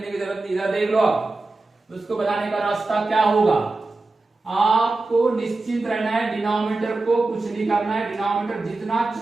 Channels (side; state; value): left; quieter; 3.3 dB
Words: की जरूरत नहीं। इधर देख लो आप उसको बनाने का रास्ता क्या होगा। आपको निश्चित रहना है, डिनोमिनेटर को कुछ नहीं करना है, डिनोमिनेटर जितना